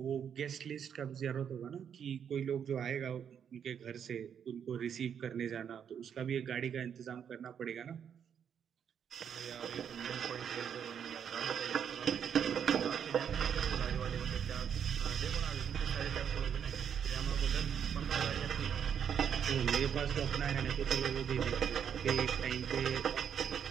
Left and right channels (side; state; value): left; quieter; 8.1 dB